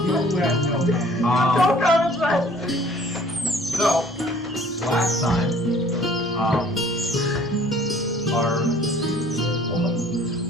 comment that. So, last time,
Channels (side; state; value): both; normal; correlation 0.54